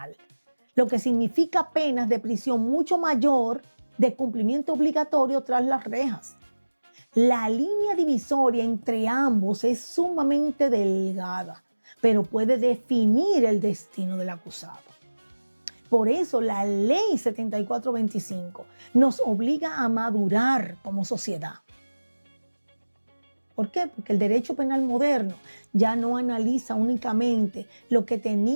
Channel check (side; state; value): both; inverted; correlation -1.00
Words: lo que significa penas de prisión mucho mayor de cumplimiento obligatorio tras las rejas. La línea divisoria entre ambos es sumamente delgada, pero puede definir el destino del acusado. Por eso la ley 7425 nos obliga a madurar como sociedad. ¿Por qué? Porque el derecho penal moderno ya no analiza únicamente lo que